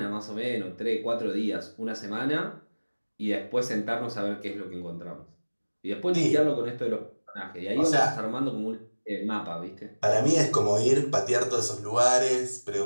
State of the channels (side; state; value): both; inverted; correlation -1.00